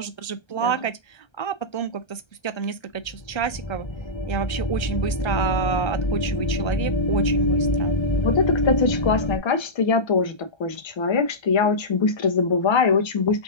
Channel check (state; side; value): late; right; 1.3 ms